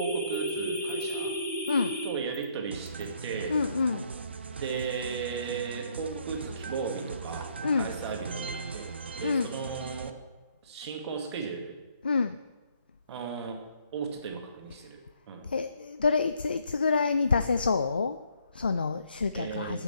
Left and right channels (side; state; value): both; inverted; correlation -0.68